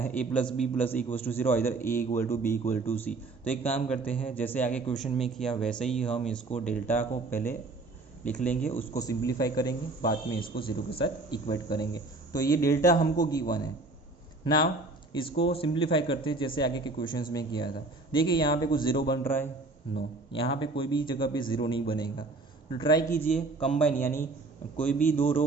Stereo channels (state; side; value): quieter; left; 3.3 dB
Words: a plus b plus equals to 0, इधर a equal to b equal to c. तो एक काम करते हैं, जैसे आगे क्वेश्चन में किया वैसे ही हम इसको डेल्टा को पहले लिख लेंगे, उसको सिंप्लीफाई करेंगे, बाद में इसको 0 के साथ इक्वेट करेंगे। तो ये डेल्टा हमको गिवन है। नाउ इसको सिंप्लीफाई करते हैं जैसे आगे के क्वेश्चंस में किया था। देखिए यहाँ पे कुछ 0 बन रहा है, नो, यहाँ पे कोई भी जगह पे 0 नहीं बनेगा। तो ट्राई कीजिए कंबाइन, यानी कोई भी दो